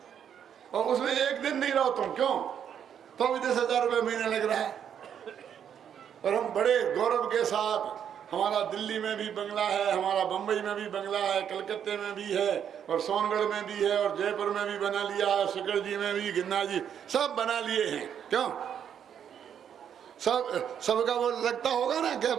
और उसमें एक दिन नहीं रहो तुम, क्यों? तो भी 10,000 रुपये महीना लग रहा है। और हम बड़े गौरव के साथ, हमारा दिल्ली में भी बंगला है, हमारा बम्बई में भी बंगला है, कलकत्ते में भी है, और सोनगढ़ में भी है, और जयपुर में भी बना लिया है, शिखर जी में भी, गिन्ना जी, सब बना लिए हैं, क्यों? सबका वो लगता होगा ना, क्या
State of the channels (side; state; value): left; quieter; 8.7 dB